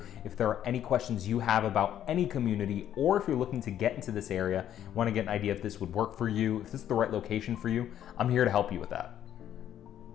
If there are any questions you have about any community, or if you're looking to get into this area, want to get an idea if this would work for you, if this is the right location for you, I'm here to help you with that.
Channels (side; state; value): right; quieter; 10.8 dB